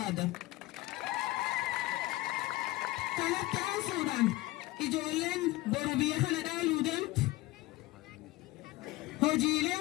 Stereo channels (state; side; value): quieter; right; 18.8 dB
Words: Kanatti aansuudhaan ijoolleen boru biyya kana dhaaluu deemtu hojiilee